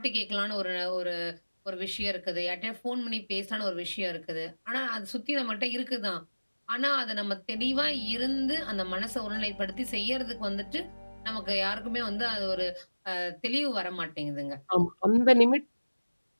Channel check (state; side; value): inverted; both; correlation -1.00